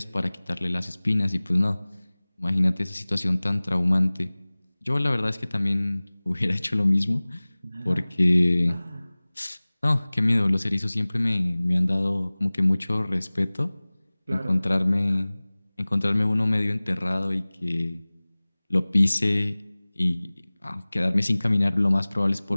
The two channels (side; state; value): both; inverted; correlation -1.00